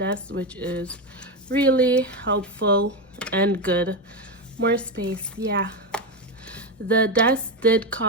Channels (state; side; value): normal; both; correlation 0.13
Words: which is really helpful and good. More space. Yeah, the desk did